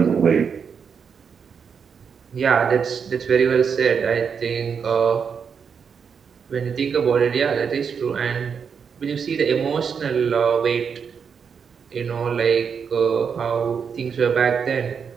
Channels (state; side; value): quieter; left; 6.5 dB